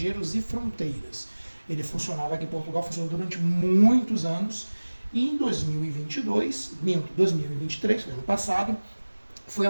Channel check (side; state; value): both; inverted; correlation -1.00